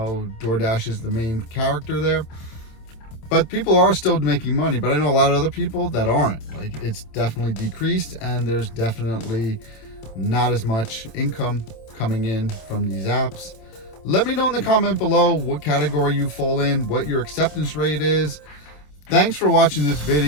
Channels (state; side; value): late; right; 27 ms